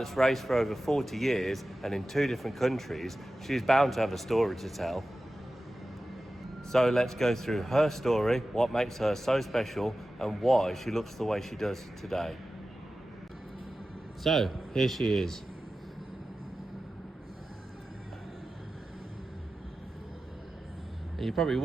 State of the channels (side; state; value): both; normal; correlation 0.94